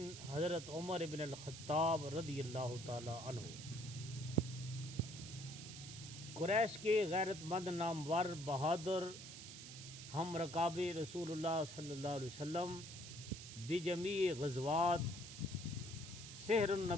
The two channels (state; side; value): noise; right; hiss, 11 dB below the sound